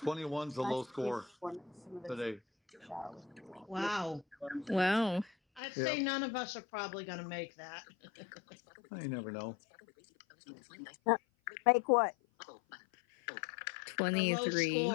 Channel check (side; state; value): right; drops out; at 5.6 s